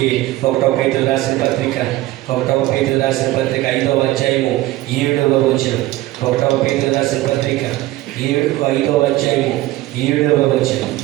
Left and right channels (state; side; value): quieter; left; 17.0 dB